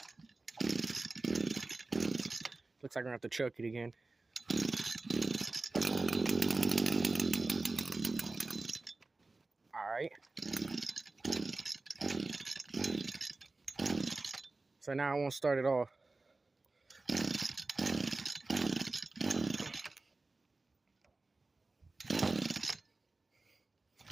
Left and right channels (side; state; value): left; quieter; 3.4 dB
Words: Looks like I'm gonna have to choke it again. All right. So now I won't start it off.